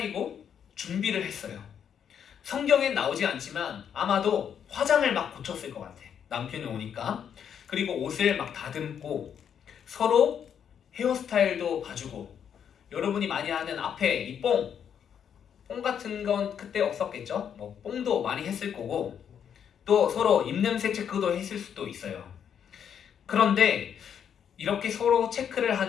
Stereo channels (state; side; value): quieter; right; 8.3 dB